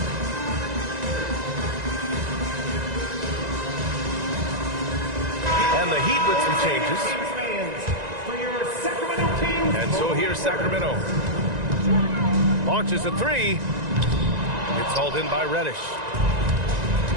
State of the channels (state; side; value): late; left; 1.9 ms